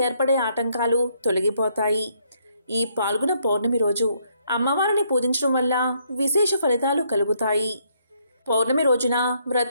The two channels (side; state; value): both; inverted; correlation -0.71